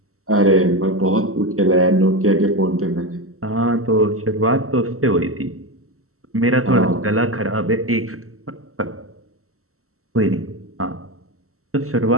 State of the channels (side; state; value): left; late; 0.63 ms